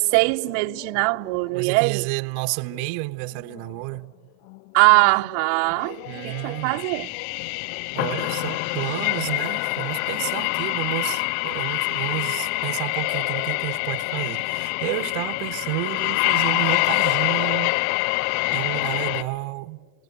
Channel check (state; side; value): different; both; correlation 0.00